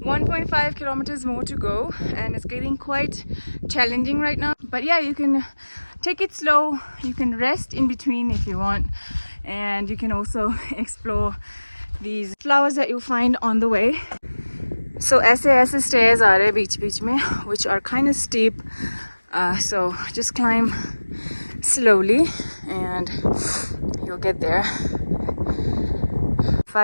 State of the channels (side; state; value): both; inverted; correlation -1.00